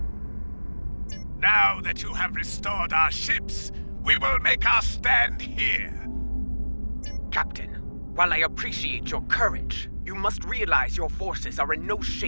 Now that you have restored our ships, we will make our stand here. Captain, while I appreciate your courage, you must realize your forces are in no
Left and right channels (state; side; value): inverted; both; correlation -1.00